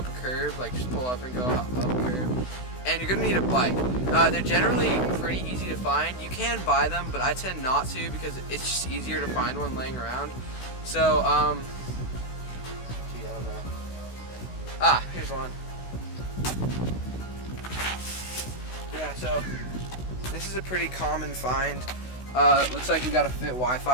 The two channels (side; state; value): right; late; 16 ms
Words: a curb, like just pull up and go up a curb. And you're going to need a bike. They're generally pretty easy to find. You can buy them, but I tend not to because it's just easier to find one laying around. So, gee, I don't know. Here's one. Yeah, so this is a pretty common find. Looks like we got a fit